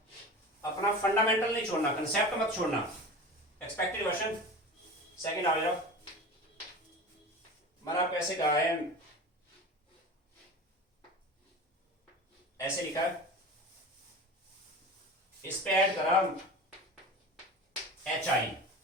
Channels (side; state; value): both; normal; correlation 0.32